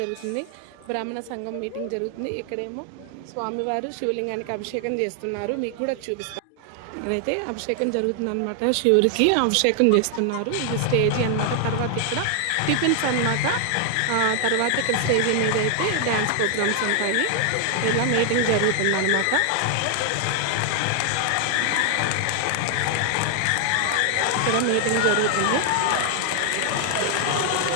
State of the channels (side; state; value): both; different; correlation 0.00